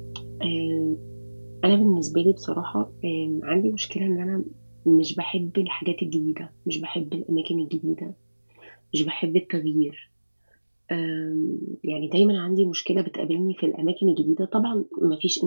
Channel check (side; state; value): both; inverted; correlation -1.00